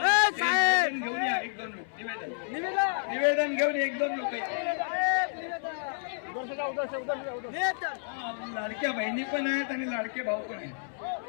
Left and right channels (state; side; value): silent; right; 58 dB below the other